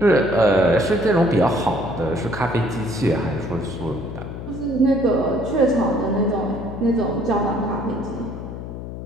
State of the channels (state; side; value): noise; left; hum, 9 dB below the sound